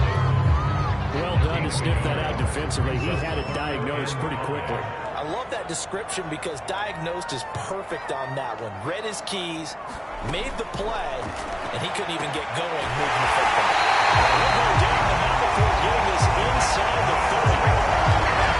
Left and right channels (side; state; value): both; identical; correlation 1.00